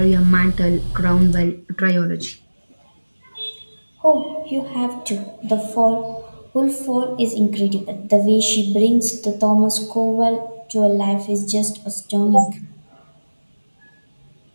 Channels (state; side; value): inverted; both; correlation -1.00